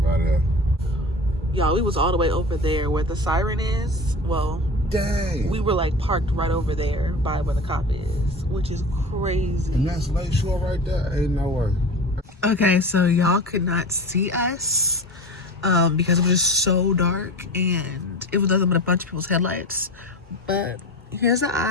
out of there. Y'all, we was all the way over there where the siren is. Well, dang. We were like parked right over there by where the cop is, which is crazy. And that's Lakeshore right there. Ain't no way. Okay, so y'all could not see us because it was just so dark and it was nothing but a bunch of people's headlights. But here's the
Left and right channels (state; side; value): normal; both; correlation 0.32